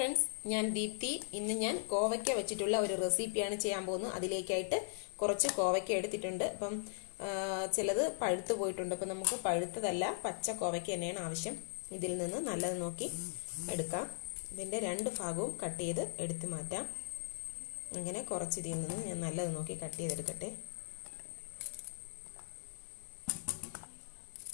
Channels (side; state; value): right; silent; 52 dB below the other